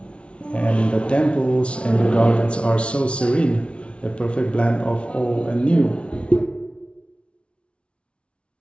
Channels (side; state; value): right; late; 0.060 ms